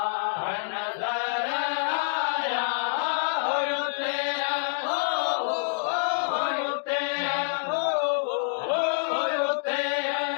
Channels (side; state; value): right; silent; digital silence